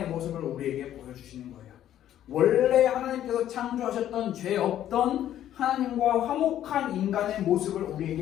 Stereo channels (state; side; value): quieter; right; 11.6 dB